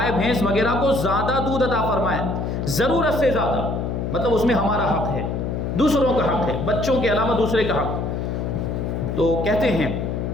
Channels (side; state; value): left; noise; hum, 2 dB below the sound